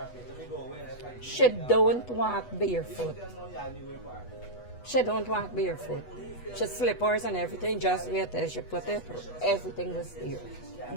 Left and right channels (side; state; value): right; late; 8.2 ms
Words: She don't walk barefoot. She don't walk barefoot. She slippers and everything, just wait till she put it, everything was there.